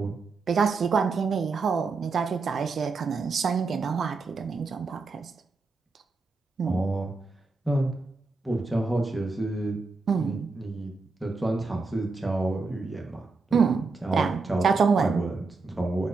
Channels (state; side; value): quieter; left; 4.1 dB